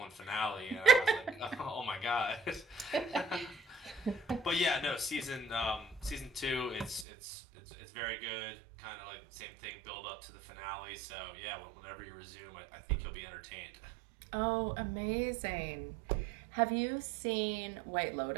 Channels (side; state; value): left; drops out; at 7.1 s